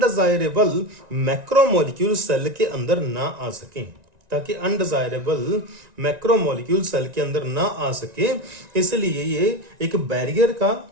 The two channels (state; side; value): late; left; 1.9 ms